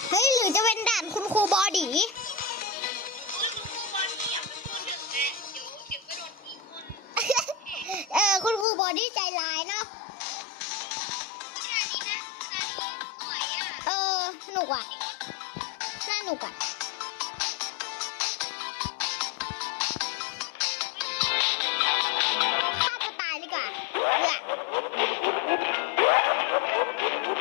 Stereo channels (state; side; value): drops out; right; at 8.7 s